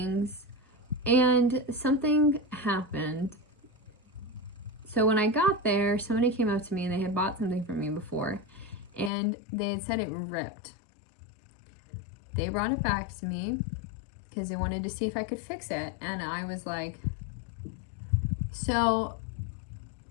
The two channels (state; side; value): drops out; right; at 9.1 s